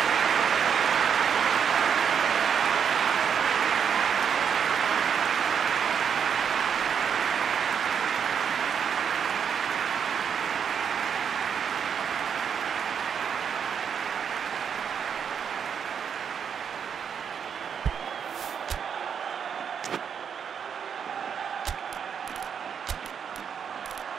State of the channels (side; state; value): left; quieter; 7.4 dB